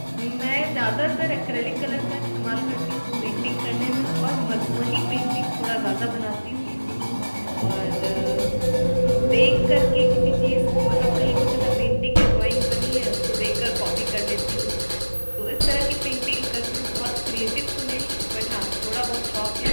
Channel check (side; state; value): both; inverted; correlation -1.00